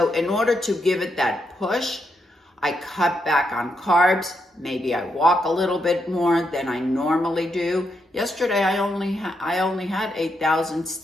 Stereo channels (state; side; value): normal; both; correlation 0.81